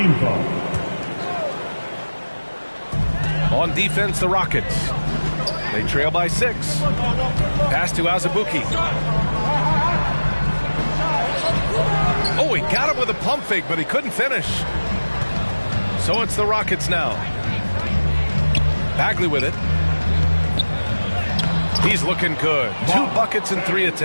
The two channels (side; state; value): both; inverted; correlation -1.00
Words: foul. On defense, the Rockets. They trail by 6. Pass to Azubuike. Oh, he got him with a pump fake, but he couldn't finish. So it's the Rockets now. Bagley with it. He's looking good. 2 buckets in 3